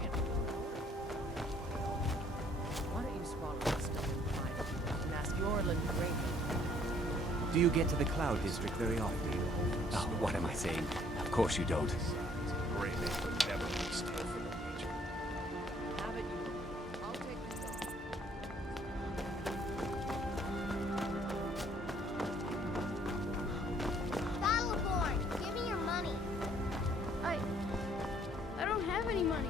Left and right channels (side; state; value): both; normal; correlation 0.61